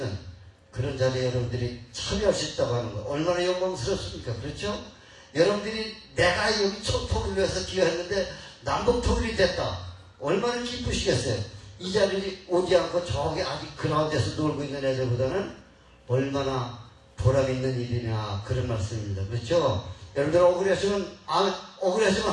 그런 자리에 여러분들이 참여할 수 있다고 하는 거 얼마나 영광스럽습니까? 그렇죠? 여러분들이 내가 여기 총통일을 위해서 기여했는데 남북 통일이 됐다. 얼마나 기쁘시겠어요? 이 자리에 오지 않고 저기 아직 그라운드에서 놀고 있는 애들보다는 얼마나 보람 있는 일이냐 그런 말씀입니다. 그렇죠? 여러분들 억울하시면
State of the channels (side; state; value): both; identical; correlation 1.00